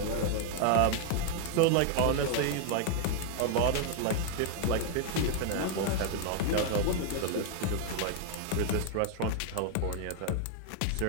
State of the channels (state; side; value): different; both; correlation 0.00